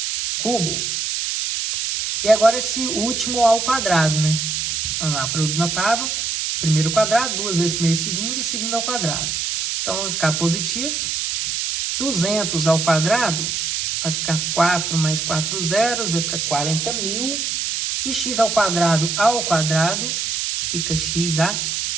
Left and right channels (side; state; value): right; noise; hiss, 1 dB below the sound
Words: cubo. E agora esse último ao quadrado, né? Vamos lá, produto notável. Primeiro quadrado, 2 vezes primeiro e segundo ao quadrado. Então, vai ficar positivo. 200 ao quadrado, vai ficar 4 mais 4 zeros, vai ficar 40.000. E x ao quadrado, fica x a